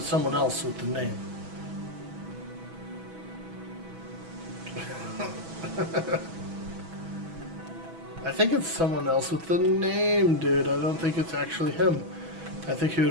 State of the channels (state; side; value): late; left; 6.1 ms